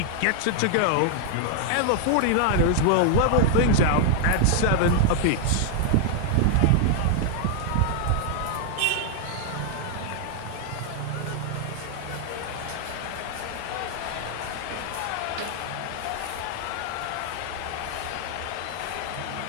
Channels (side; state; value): both; different; correlation 0.00